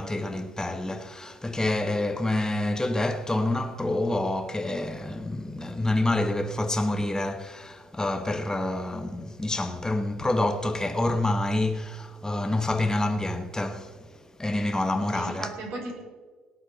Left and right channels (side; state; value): both; normal; correlation 0.91